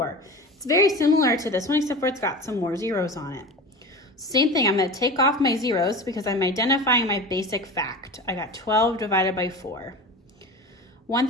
It's very similar to this one, except for it's got some more zeros on it. Same thing, I'm going to take off my zeros because I'm identifying my basic fact. I got 12 divided by 4.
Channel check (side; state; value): both; normal; correlation 0.31